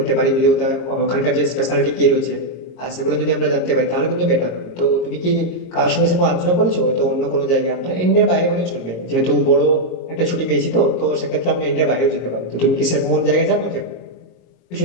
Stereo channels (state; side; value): late; right; 22 ms